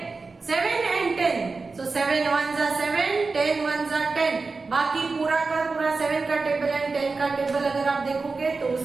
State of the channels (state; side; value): quieter; left; 4.1 dB